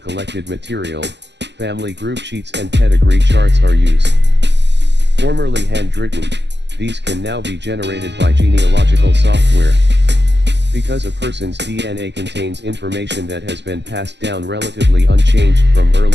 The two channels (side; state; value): left; late; 0.51 ms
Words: material, family group sheets and pedigree charts are used. Formerly handwritten, these can now be generated by genealogical software. Because a person's DNA contains information that has been passed down relatively unchanged from